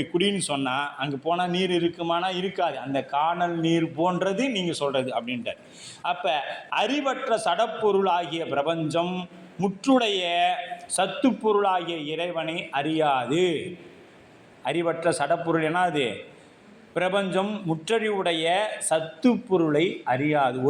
குடின்னு சொன்னால் அங்கே போனால் நீர் இருக்குமானா? இருக்காது. அந்த காணல் நீர் போன்றது நீங்கள் சொல்கிறது அப்படின்ட்டு. அப்போ அறிவற்ற சடப்பொருள் ஆகிய பிரபஞ்சம் முற்றுடைய சத்து பொருளாகிய இறைவனை அறியாது. அறிவற்ற சடப்பொருள் என்ன? அது பிரபஞ்சம் முற்றறிவுடைய சத்து பொருளை அறியாது,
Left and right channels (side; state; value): both; identical; correlation 1.00